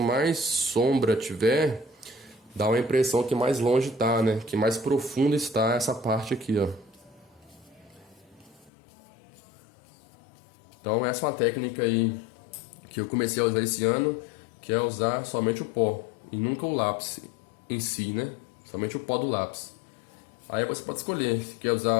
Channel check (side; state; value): right; drops out; at 8.7 s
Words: sombra tiver, dá uma impressão que mais longe tá, né? Que mais profunda está essa parte aqui, ó. Então, essa é uma técnica aí que eu comecei a usar esse ano, que é usar somente o pó e nunca o lápis em si, né? Somente o pó do lápis. Aí você pode escolher se quer